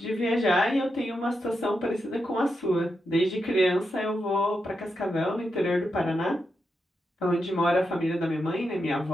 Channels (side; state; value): both; normal; correlation 0.86